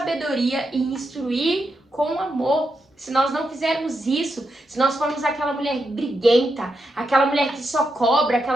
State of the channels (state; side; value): normal; both; correlation 0.84